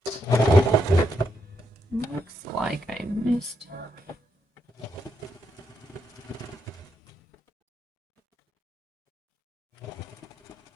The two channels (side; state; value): both; normal; correlation 0.80